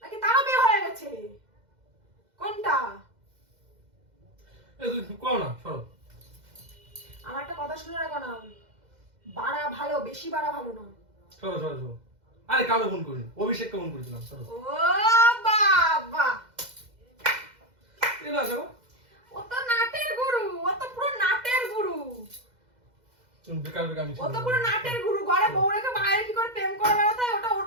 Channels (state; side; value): late; left; 2.0 ms